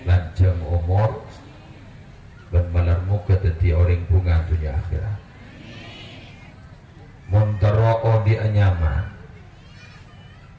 lanjang umur dan malar muga dadi orang bunga dunia akhirat. Montero di anyaman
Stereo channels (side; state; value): both; identical; correlation 1.00